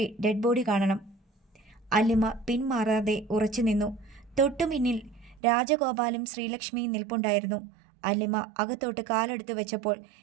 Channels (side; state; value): left; drops out; at 5.4 s